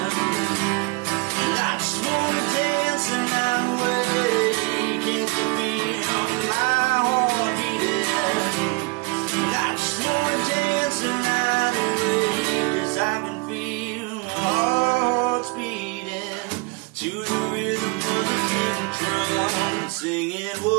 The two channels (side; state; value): left; quieter; 27.3 dB